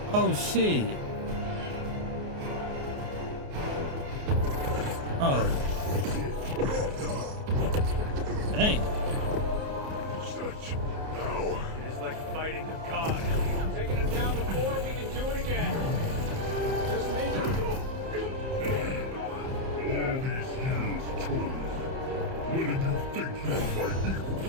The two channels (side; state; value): left; late; 28 ms